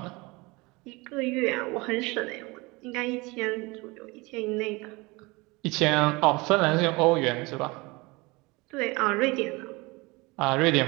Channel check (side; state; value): left; quieter; 24.5 dB